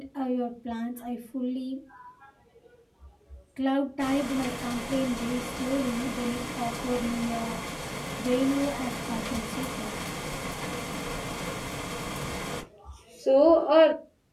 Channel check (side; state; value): both; identical; correlation 1.00